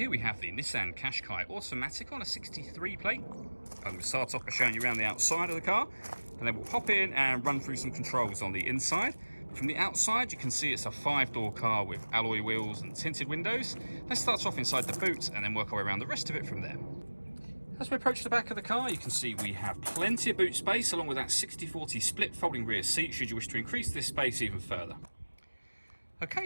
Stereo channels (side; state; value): both; inverted; correlation -1.00